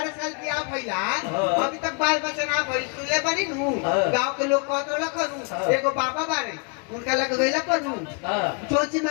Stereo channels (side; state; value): right; quieter; 34.1 dB